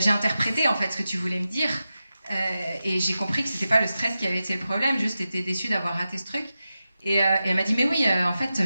interprété en fait ce que tu voulais me dire et j'ai compris que c'était pas le stress qui avait été le problème, juste j'étais déçue d'avoir raté ce truc. Et elle m'a dit mais oui, en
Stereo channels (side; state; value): both; inverted; correlation -0.92